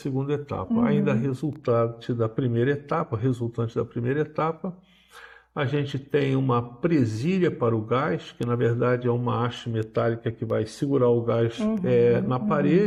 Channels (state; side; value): identical; both; correlation 1.00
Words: etapa. Ainda resultante da primeira etapa, a gente tem uma presilha para o gás, que na verdade é uma haste metálica que vai segurar o gás na